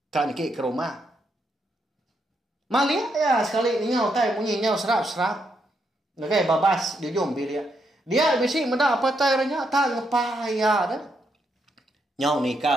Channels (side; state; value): both; normal; correlation 0.79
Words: Kan niki ke rumah. Malia ya sekali nyau tai bunyi nyau serap-serap. Nagai babas di ujung bilik. Dia bisi meda apa itu airnya tak ngepaya dah. Nyau